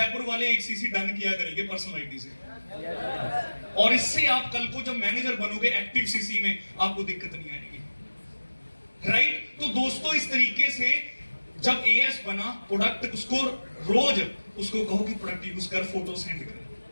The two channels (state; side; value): inverted; both; correlation -1.00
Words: वाले 1 सीसी डन किया करेंगे पर्सनल आईडी से, और इससे आप कल को जब मैनेजर बनोगे एक्टिव सीसी में, आपको दिक्कत नहीं आएगी, राइट? तो दोस्तों इस तरीके से जब एएस बना, प्रोडक्ट उसको रोज उसको कहो कि प्रोडक्ट यूज कर, फोटो सेंड कर,